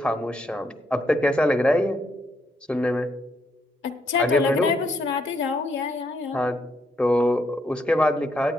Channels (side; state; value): both; normal; correlation 0.75